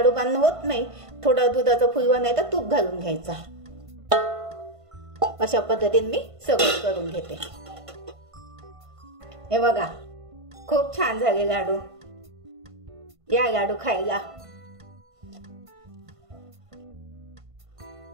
बांधणं होत नाही. थोडा दुधाचा फुलवा नाही तर तूप घालून घ्यायचा. अशा पद्धतीने मी सगळं करून घेते. हे बघा खूप छान झाले लाडू. या लाडू खायला.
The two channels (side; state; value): left; late; 1.5 ms